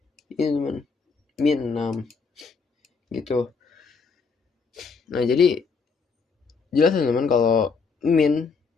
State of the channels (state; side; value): quieter; right; 5.0 dB